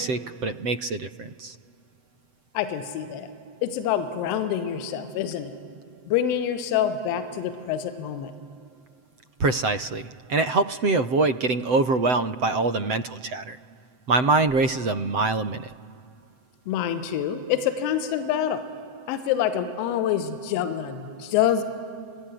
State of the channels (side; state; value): left; late; 7.8 ms